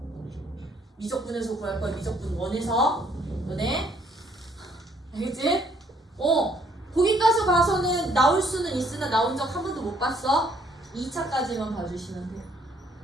미적분에서 구할 거야. 미적분 1에서. 너네? 알겠지? 거기까지 봐서는 나올 수는 있으나 나온 적 한 번도 못 봤어. 2차까지만 봐주시면 돼요.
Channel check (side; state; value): both; normal; correlation 0.65